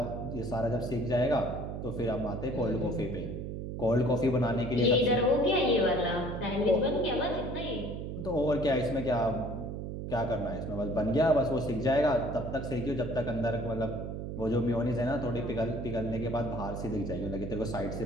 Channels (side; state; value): right; noise; hum, 6 dB below the sound